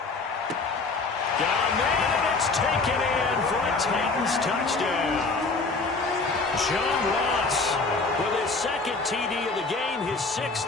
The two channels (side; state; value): right; quieter; 3.8 dB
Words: Got a man, and it's taken in for a Titans touchdown. John Ross with his 2nd TD of the game, his